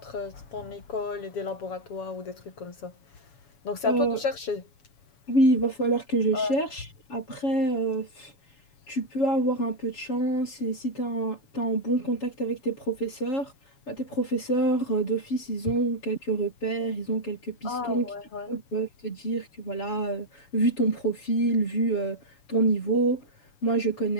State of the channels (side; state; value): right; late; 7.2 ms